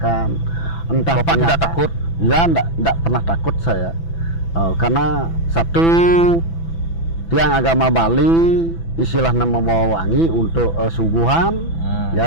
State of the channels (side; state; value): right; late; 6.0 ms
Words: Entah Bapak tidak takut? Ya, tidak pernah takut saya, karena satu tiang agama Bali istilahnya membawa wangi untuk suguhan.